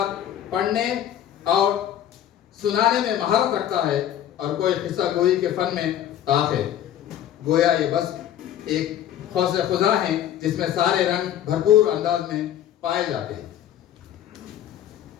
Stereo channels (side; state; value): right; quieter; 10.9 dB